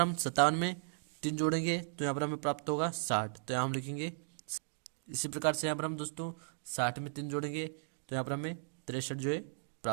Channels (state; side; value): silent; left; digital silence